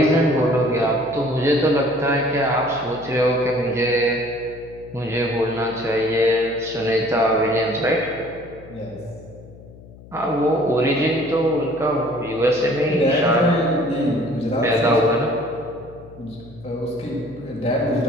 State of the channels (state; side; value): noise; left; hum, 20 dB below the sound